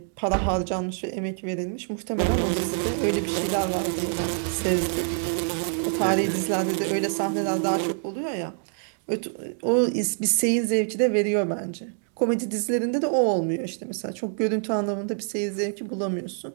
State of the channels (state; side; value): silent; left; 57 dB below the other